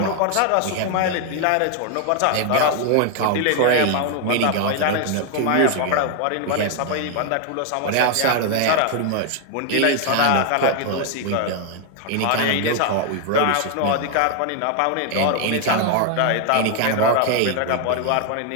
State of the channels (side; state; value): both; different; correlation 0.00